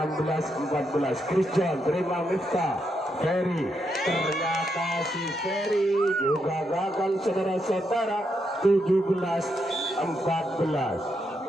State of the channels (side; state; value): both; normal; correlation 0.81